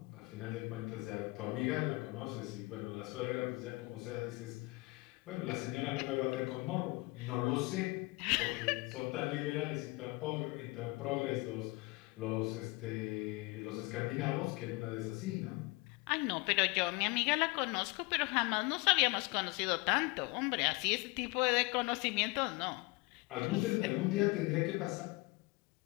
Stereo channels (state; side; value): quieter; right; 24.8 dB